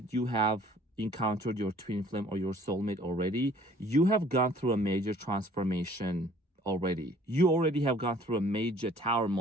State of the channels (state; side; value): normal; both; correlation 0.56